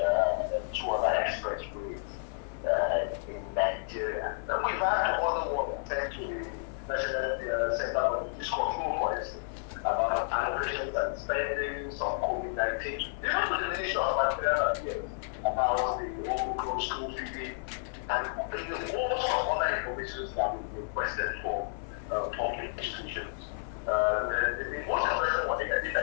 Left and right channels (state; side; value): silent; right; 57 dB below the other